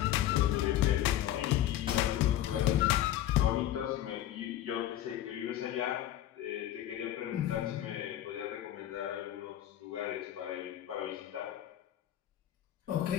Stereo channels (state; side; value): quieter; right; 12.6 dB